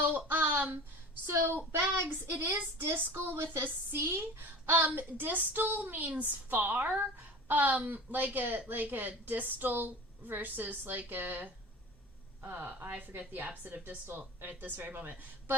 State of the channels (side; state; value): both; normal; correlation 0.37